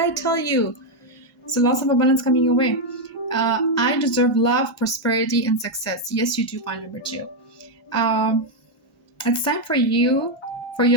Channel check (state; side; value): normal; both; correlation 0.02